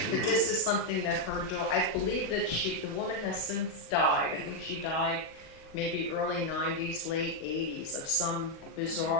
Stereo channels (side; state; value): right; late; 38 ms